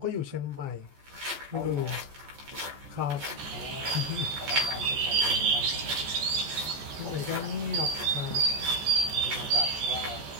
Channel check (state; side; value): late; left; 14 ms